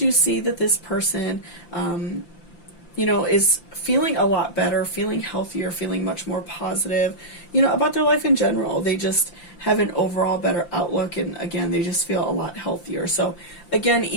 see that this person, is feeling a lot better, feeling healthier, feeling much more positive, about their life in general. They just have an overall better outlook, and again, they just feel a lot healthier. So again,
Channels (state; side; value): late; right; 5.8 ms